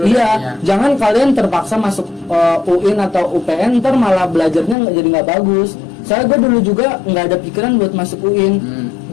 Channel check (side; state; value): right; drops out; at 4.8 s